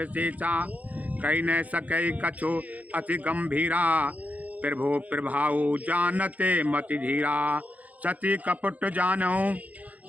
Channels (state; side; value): late; left; 0.075 ms